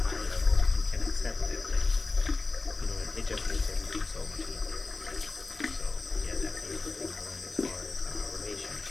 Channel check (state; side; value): quieter; right; 3.6 dB